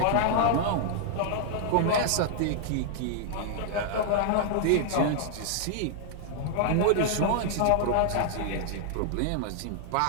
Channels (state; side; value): different; both; correlation -0.01